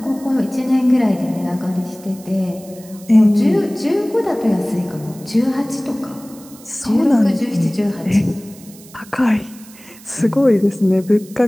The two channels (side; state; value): right; noise; hiss, 21 dB below the sound